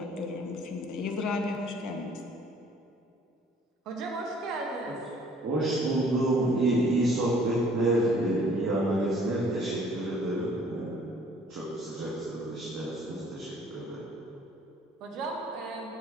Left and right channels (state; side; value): normal; both; correlation 0.57